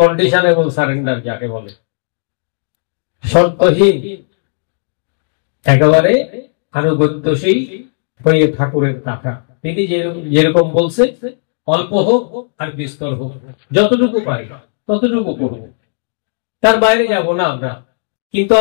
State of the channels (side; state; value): right; silent; digital silence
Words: এবং সারেন্ডার যাকে বলে, শর্তহীন একেবারে আনুগত্যশীল হয়ে ঠাকুরের টাকা। তিনি যেরকম বলছে অল্প হোক আর বিস্তর হোক, যতটুকু পাই ততটুকু করব, তার বাইরে যাব না আমরা। কিন্তু